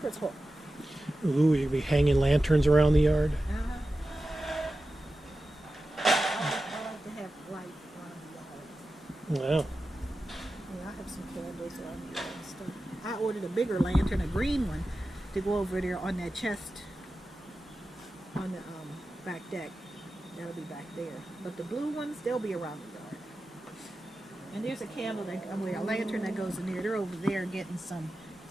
hook. Ooh, you'll be hanging lanterns around the yard. I like to have light around the yard. Wow. Yeah, I have some candles around the yard and stuff. I ordered a bigger lantern, a green one, to go over there on that chest on the back deck. That'll be back there. But the blue ones, they'll be around the yard. And there's a candle, a lantern that goes in there. They're over there getting some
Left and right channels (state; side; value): normal; both; correlation 0.93